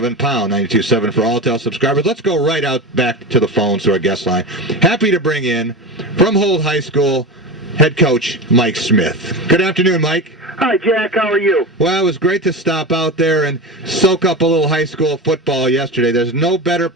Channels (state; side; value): normal; both; correlation 0.24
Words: pound 92.7 for Alltel subscribers. Let's go right out back to the phones to our guest line. Happy to bring in, from Holt High School, head coach Mike Smith. Good afternoon, Mike. Hi, Jack. How are you? Well, it was great to stop out there and soak up a little high school football yesterday. There's no better